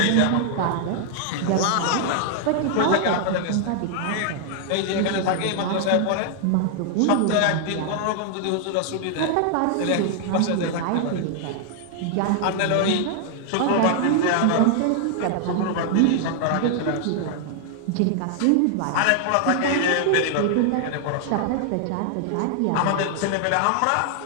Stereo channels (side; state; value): both; different; correlation 0.00